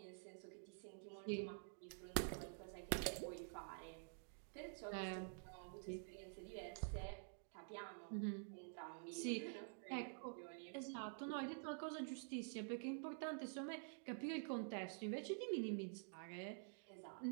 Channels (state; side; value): silent; left; digital silence